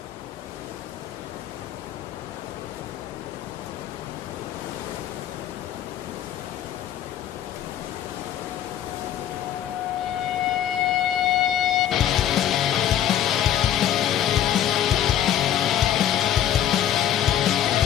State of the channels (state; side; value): quieter; right; 10.8 dB